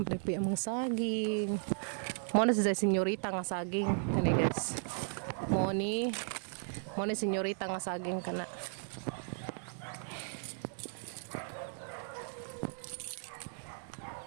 prepi among saging mo na sa senyorita nga saging kani guys mo ni senyorita nga saging kana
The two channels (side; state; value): left; silent; 54 dB below the other